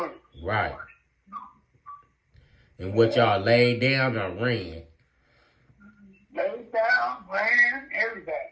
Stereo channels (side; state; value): both; identical; correlation 1.00